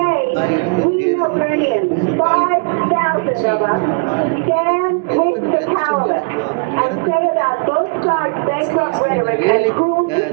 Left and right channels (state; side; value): quieter; left; 34.0 dB